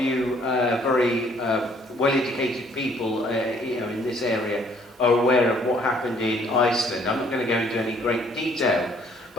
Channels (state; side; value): normal; both; correlation 0.62